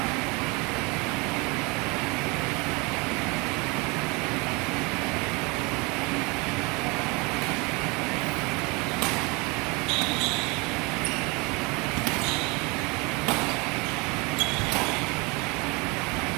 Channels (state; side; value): quieter; left; 27.7 dB